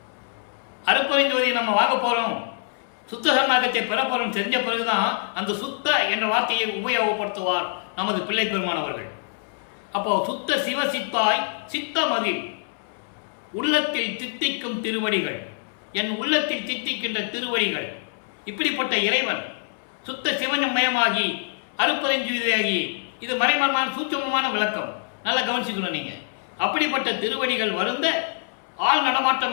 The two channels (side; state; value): right; silent; 62 dB below the other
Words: அருப்பெருஞ்சோதியை நம்ம வாங்க போறோம், சுத்த சன்மார்க்கத்தை பெற போறோம் தெரிஞ்ச பிறகுதான் அந்த சுத்த என்ற வார்த்தையை உபயோகப்படுத்துவார் நமது பிள்ளை பெருமானவர்கள். அப்போ சுத்த சிவ சித்தாய் சித்தமதில் உள்ளத்தில் தித்திக்கும் திருவடிகள், என் உள்ளத்தில் தித்திக்கின்ற திருவடிகள். இப்படிப்பட்ட இறைவன் சுத்த சிவமயமாகி அருப்பெருஞ்சுவதியாகி, இது மறைமரமான சூட்சமமான விளக்கம், நல்லா கவனிச்சுக்கணும் நீங்க. அப்படிப்பட்ட திருவடிகள் வருந்த ஆள்